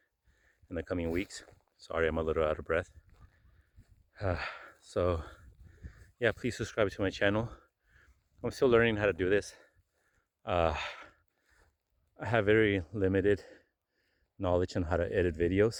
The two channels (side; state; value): both; identical; correlation 1.00